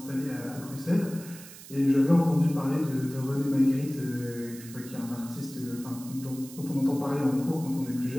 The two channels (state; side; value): noise; right; hiss, 16 dB below the sound